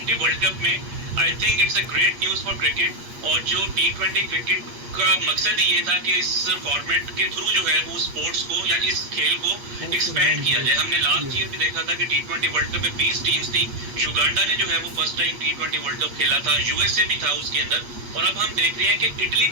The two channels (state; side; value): late; left; 8.4 ms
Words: वर्ल्ड कप में आई think it's a great news for cricket. और जो T20 क्रिकेट का मकसद ही ये था कि इस फॉर्मेट के थ्रू जो है वो स्पोर्ट्स को या इस खेल को एक्सपेंड किया जाए। हमने लास्ट ईयर भी देखा था कि T20 वर्ल्ड कप में 20 टीम्स थी, युगांडा ने जो है वो first time T20 world cup खेला था, USA भी था उसके अंदर, और अब हम देख रहे हैं कि इटली